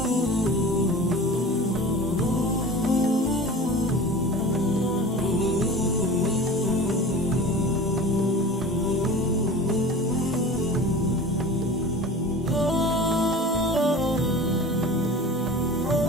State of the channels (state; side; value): normal; both; correlation 0.37